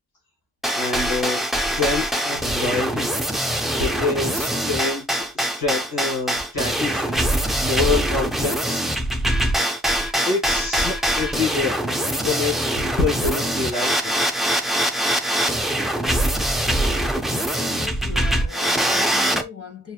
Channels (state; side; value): normal; both; correlation 0.64